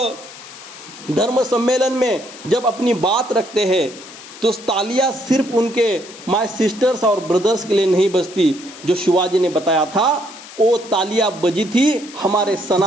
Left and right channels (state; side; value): noise; left; hiss, 17 dB below the sound